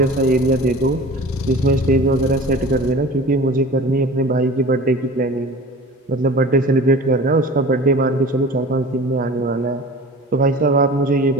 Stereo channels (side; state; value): both; normal; correlation 0.39